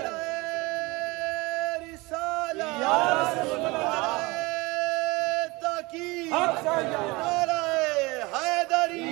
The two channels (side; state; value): left; quieter; 23.8 dB